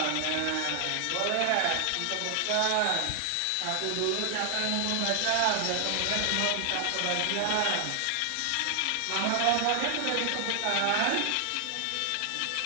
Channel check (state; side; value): different; both; correlation 0.00